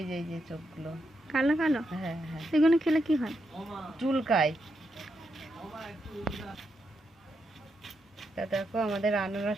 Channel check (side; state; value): both; normal; correlation 0.83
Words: যে চোখগুলো কালো কালো। হ্যাঁ হ্যাঁ, এগুলো খেলে কি হয়? চুলকায়। তা দেখো আমাদের